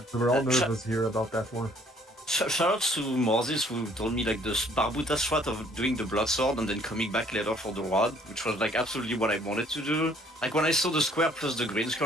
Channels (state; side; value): normal; both; correlation 0.60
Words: We were all nervous here about that one. Shoutouts to Moses who told me like this Barbuta strat of doing the blood sword and then coming back later for the rod, which was like absolutely what I wanted to do. Like when I saw the square plus the green